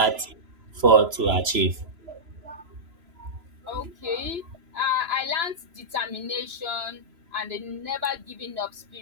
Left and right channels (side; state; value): left; late; 3.0 ms